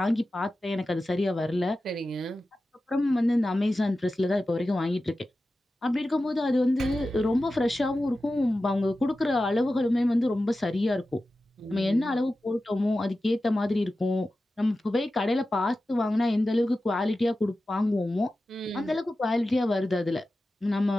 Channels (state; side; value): normal; both; correlation 0.94